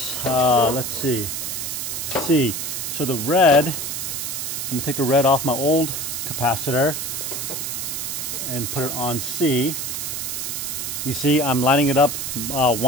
let's see, C. So the red, I'm going to take the red off my old capacitor and put it on C. You see, I'm lining it up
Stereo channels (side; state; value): right; noise; hiss, 3 dB below the sound